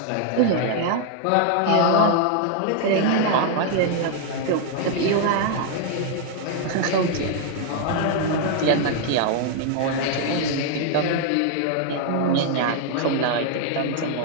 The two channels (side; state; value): both; different; correlation 0.00